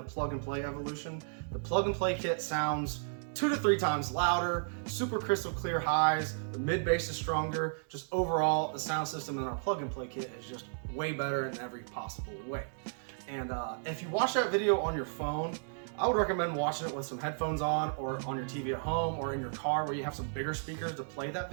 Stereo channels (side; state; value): left; silent; digital silence